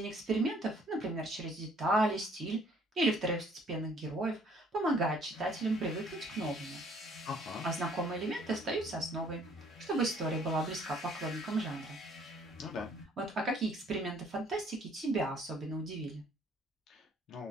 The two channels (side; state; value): both; normal; correlation 0.60